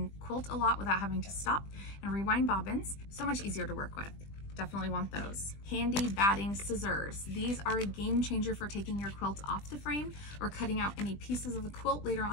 quilt a lot without having to stop and rewind bobbins. So much easier to work with. Definitely want those. Handy batting scissors. These are a game changer for taking your quilt off the frame or cutting out any pieces of the quilt later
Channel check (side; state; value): right; late; 20 ms